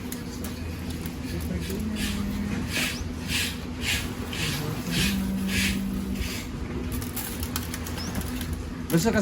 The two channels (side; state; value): both; identical; correlation 1.00